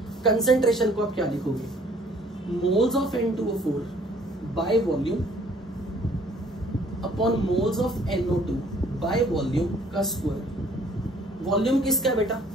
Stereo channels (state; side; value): normal; both; correlation 0.58